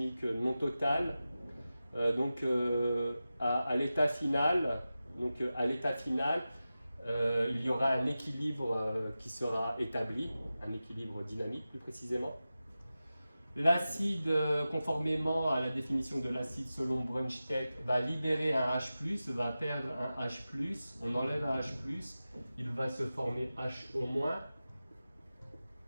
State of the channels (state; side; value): inverted; both; correlation -0.94